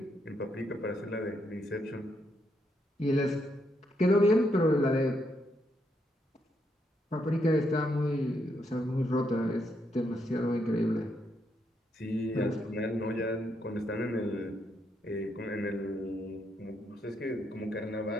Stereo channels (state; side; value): normal; both; correlation 0.78